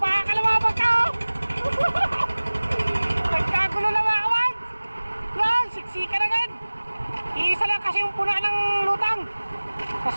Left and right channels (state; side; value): inverted; both; correlation -1.00